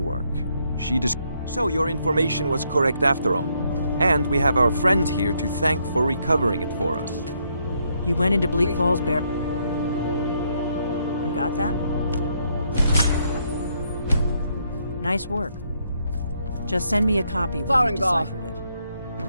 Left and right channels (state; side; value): inverted; both; correlation -0.74